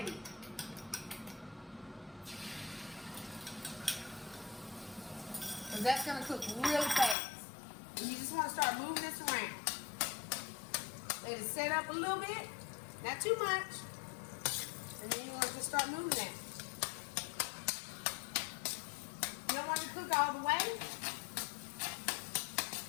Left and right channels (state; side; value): drops out; right; at 7.2 s